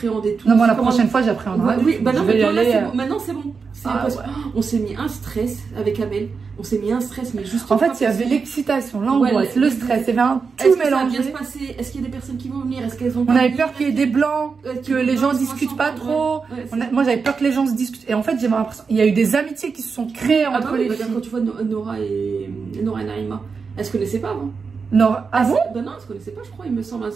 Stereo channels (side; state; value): left; quieter; 5.2 dB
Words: et tout. Non, moi, la prochaine fois, j'appréhenderai. Oui, bah non, maintenant, c'est bon. On s'est mis un stress avec Amel. On s'est mis un stress, mais juste. En fait, il y avait l'excitation, l'angoisse, le stress. Il y avait tout mélangé. Est-ce que ça va bien se passer? Est-ce qu'il y a des personnes qui vont venir? Est-ce qu'elles ont. On avait peur qu'il y ait des blancs, que les gens discutent pas trop. Moi, j'avais peur que les gens se discutent. Et en fait, j'ai l'impression. Il y a eu des amitiés qui se sont créées entre les filles. Quand tu vois Nora et Naïma, elles se connaissaient pas avant. Nora, ah bon? Ben non, elles se connaissaient pas, je crois, il me semble.